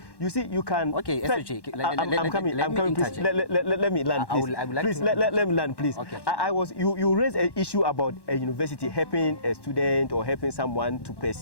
you see you can. Okay, I'm coming. Please let me land, please. Please let me land, please. Okay. You raised an issue about a university helping a student or helping someone to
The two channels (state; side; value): late; right; 1.1 ms